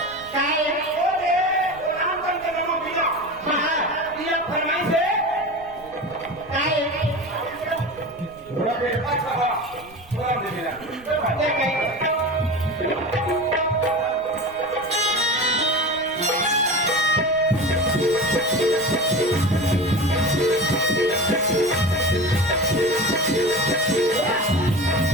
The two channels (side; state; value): right; noise; rumble, 24 dB below the sound